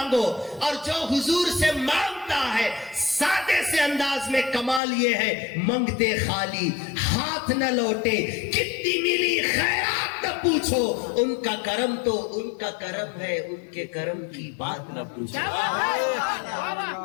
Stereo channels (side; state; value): right; drops out; at 4.8 s